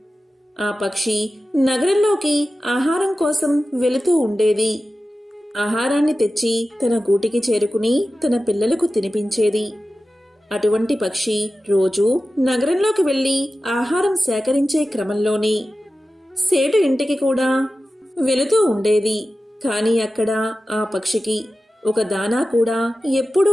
ఆ పక్షి నగరంలోకి ఆహారం కోసం వెళుతూ ఉండేది. ఆహారాన్ని తెచ్చి తన గూటికి చేరుకుని తన పిల్లలకు తినిపించేది. అటువంటి పక్షి రోజూ నగరంలోకి వెళ్లి ఆహారం సేకరించే క్రమంలోనే సేటు ఇంటికి కూడా వెళుతూ ఉండేది. కాని అక్కడ ఆ పక్షికి ఒక దానా కూడా ఎప్పుడూ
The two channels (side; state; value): both; normal; correlation 0.94